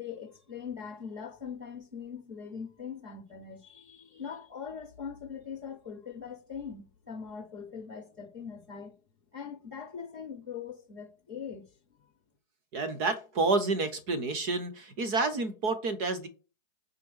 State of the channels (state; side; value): late; left; 4.7 ms